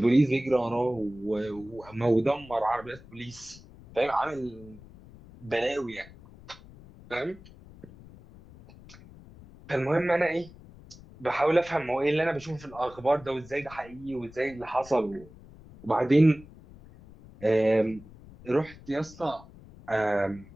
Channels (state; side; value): noise; left; rumble, 20 dB below the sound